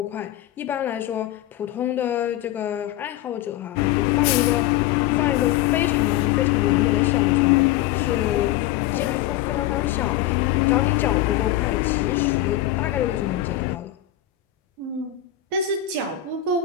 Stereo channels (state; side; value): quieter; right; 13.2 dB